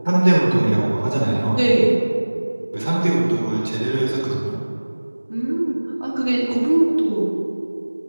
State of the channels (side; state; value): both; inverted; correlation -1.00